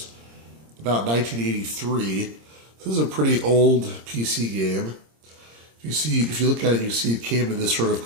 about 1983. This is a pretty old PC game. If you look at it, you see it came in this sort of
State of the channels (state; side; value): late; left; 26 ms